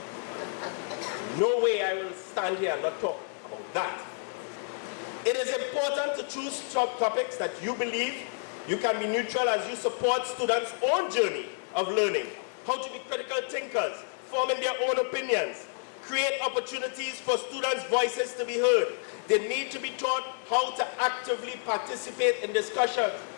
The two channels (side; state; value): right; silent; 58 dB below the other